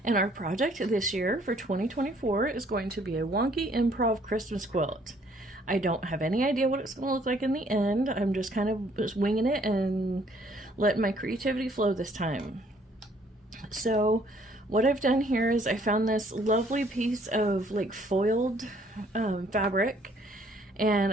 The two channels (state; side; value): normal; both; correlation 0.62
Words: and our project this year for 2024 is going to be a wonky improv Christmas quilt. I don't have any idea what it's going to look like in the end. I'm just kind of just winging it and letting my creativity flow this time. So what I've done here is I found this lovely piece of like foiled fabric, and